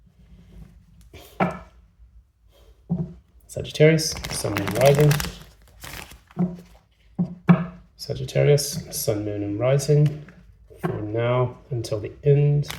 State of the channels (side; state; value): both; identical; correlation 1.00